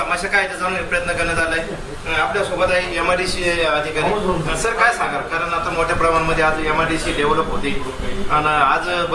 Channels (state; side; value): identical; both; correlation 1.00